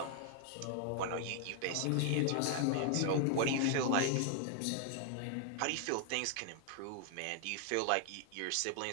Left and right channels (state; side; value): different; both; correlation 0.00